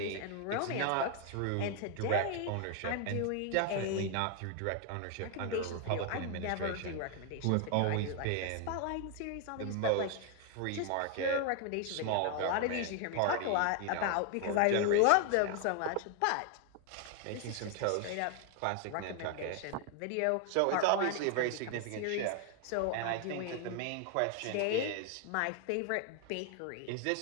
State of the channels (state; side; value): different; both; correlation 0.00